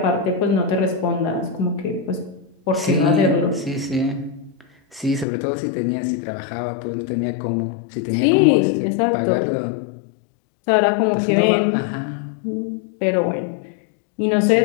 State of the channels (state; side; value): drops out; right; at 5.2 s